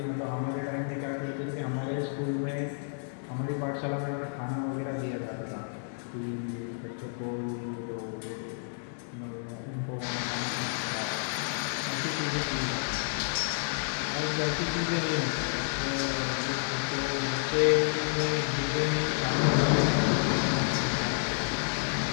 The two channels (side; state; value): right; silent; digital silence